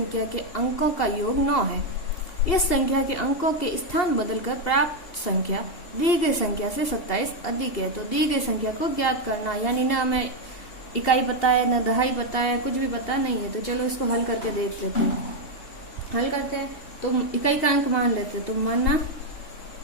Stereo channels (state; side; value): late; right; 2.8 ms